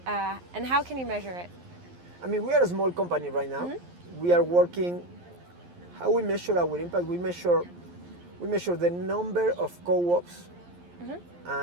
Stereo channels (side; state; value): left; late; 11 ms